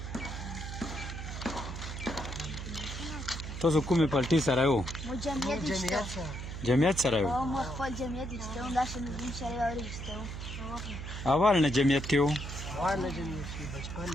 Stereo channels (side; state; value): right; noise; hum, 7 dB below the sound